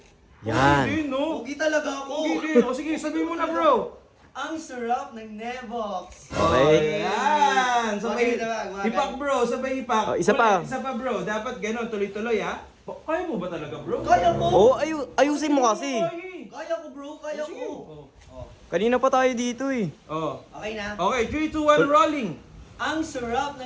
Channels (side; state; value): both; identical; correlation 1.00